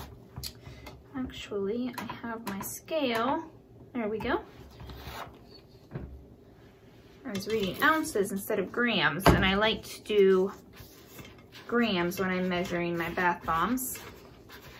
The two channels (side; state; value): both; identical; correlation 1.00